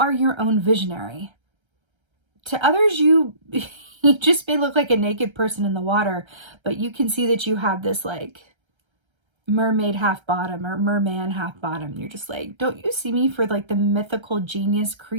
your own visionary. to others, you you just may look like a naked person in the water, but you can see that you have this like mermaid half bottom or merman half bottom. You're just like, don't you see me for like the mythical genius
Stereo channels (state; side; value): late; left; 1.3 ms